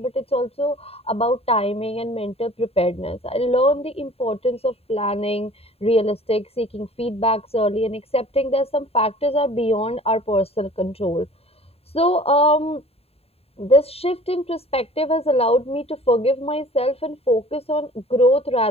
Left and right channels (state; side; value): late; right; 0.29 ms